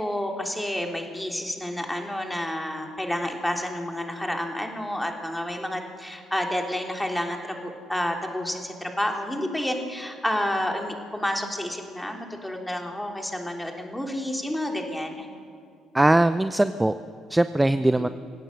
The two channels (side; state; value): both; normal; correlation 0.95